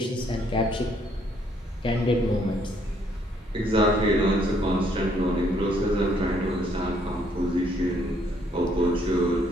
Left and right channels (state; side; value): normal; both; correlation 0.67